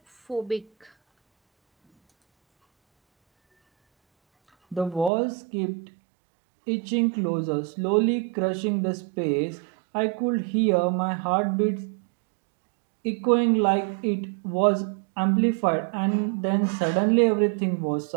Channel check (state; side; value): drops out; left; at 5.1 s